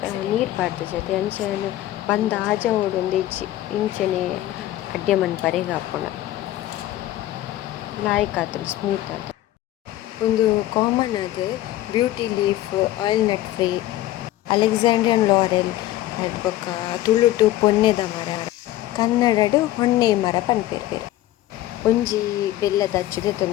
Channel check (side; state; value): right; quieter; 14.7 dB